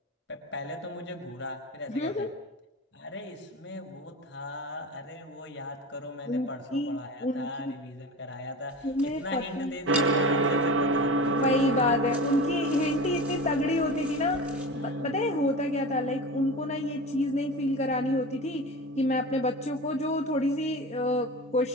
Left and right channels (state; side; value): normal; both; correlation 0.30